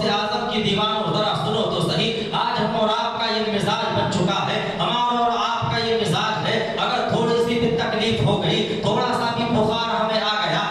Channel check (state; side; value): identical; both; correlation 1.00